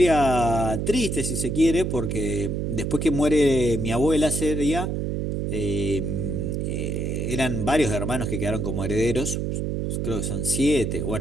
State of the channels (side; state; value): right; noise; hum, 1 dB below the sound